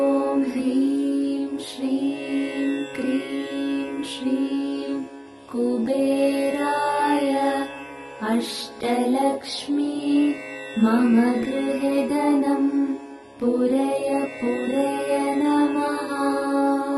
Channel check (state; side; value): identical; both; correlation 1.00